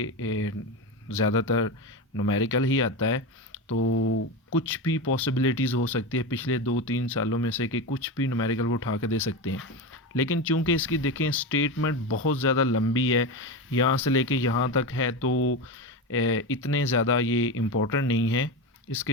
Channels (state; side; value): normal; both; correlation 0.19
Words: ज़्यादातर न्यूमेरिकल ही आता है, तो कुछ भी पॉसिबिलिटीज़ हो सकती है पिछले 2-3 सालों में से कि कुछ भी न्यूमेरिकल वो उठा के दे सकते हैं। लेकिन चूंकि इसकी देखें स्टेटमेंट बहुत ज़्यादा लंबी है, यहाँ से लेके यहाँ तक है, तो इतने ज़्यादा ये इम्पोर्टेंट नहीं है।